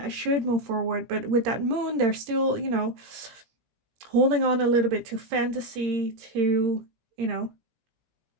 should move forward. But with that Moon, they're still, holding on a little bit to fantasy, to,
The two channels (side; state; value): left; late; 18 ms